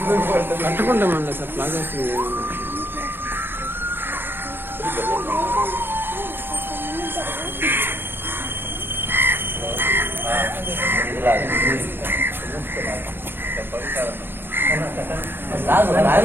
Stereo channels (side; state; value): left; late; 0.10 ms